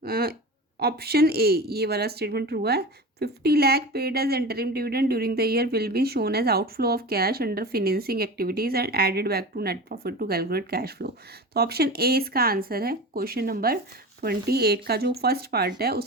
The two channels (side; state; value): both; normal; correlation 0.31